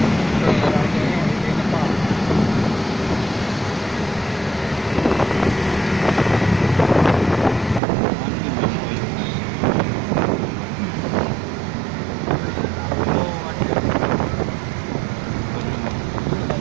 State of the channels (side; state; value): left; drops out; at 7.8 s